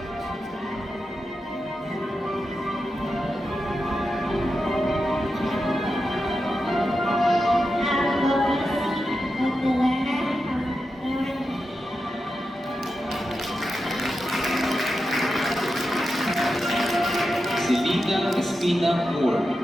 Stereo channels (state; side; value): normal; both; correlation 0.89